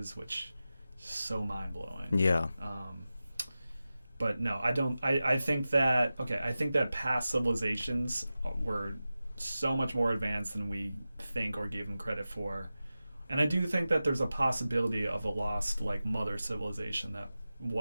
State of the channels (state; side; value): inverted; both; correlation -0.94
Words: which is so mind-blowing. Yeah. But no, I don't. I think that I think that past civilizations were so much more advanced than we think or give them credit for, and I do think that there's a possibility of a lost like mother civilization that